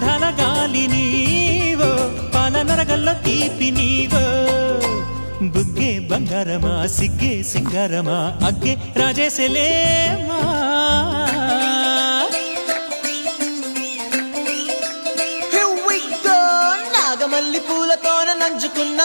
గాలి నీవో పాల నరగల్లో తీపి నీవో బుగ్గే బంగారమా సిగ్గే సింగారమా అగ్గే రాజేసలేమా మల్లి పూలతోన నంచుకున్న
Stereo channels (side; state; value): both; inverted; correlation -1.00